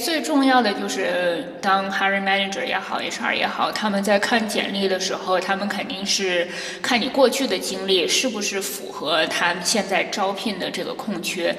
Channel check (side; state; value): both; identical; correlation 1.00